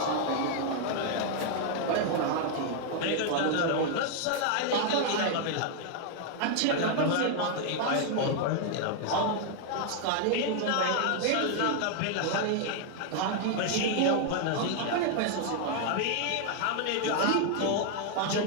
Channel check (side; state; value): both; different; correlation 0.00